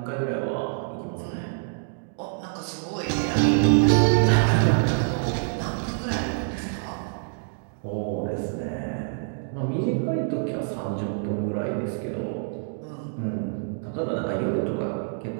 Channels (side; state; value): left; silent; digital silence